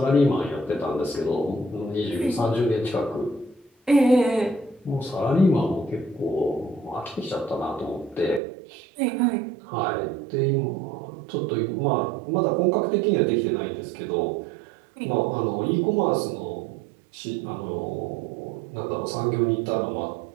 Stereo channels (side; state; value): left; drops out; at 8.4 s